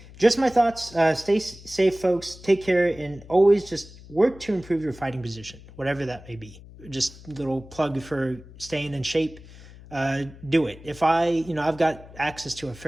just my thoughts. Stay safe, folks. Take care, and always just work to improve your fighting position, whatever that may be. Just a little plug for staying in shape. Do it. If I've got access to a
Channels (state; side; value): noise; left; hum, 19 dB below the sound